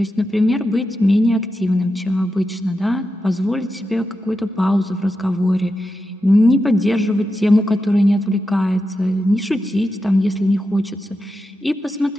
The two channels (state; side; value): normal; both; correlation 0.88